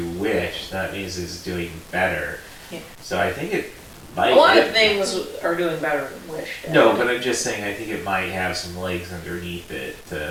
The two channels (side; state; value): both; identical; correlation 1.00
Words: Wish, that means it's doing better. Yeah. So I think it might... A lot of things are doing better than Wish did. No, but I'm just saying I think it might have some legs underneath it.